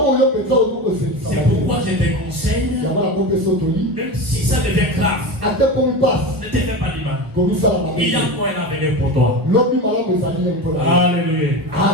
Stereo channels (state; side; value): late; left; 1.3 ms